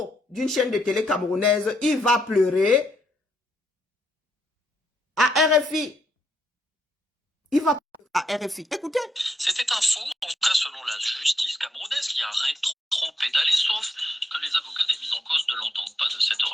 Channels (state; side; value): normal; both; correlation 0.78